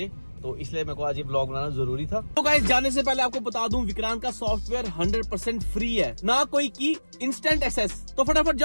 तो इसलिए मेरे को आज ये ब्लॉग बनाना जरूरी था। तो गाइस जाने से पहले आपको बता दूं, विक्रांत का सॉफ्टवेयर 100% फ्री है, ना कोई की, इंस्टेंट एक्सेस। तो फटाफट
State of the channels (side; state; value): both; inverted; correlation -1.00